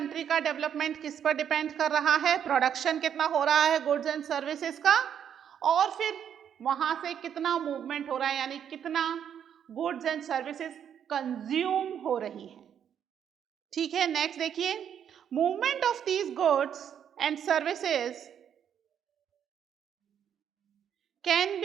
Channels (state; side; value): quieter; left; 8.8 dB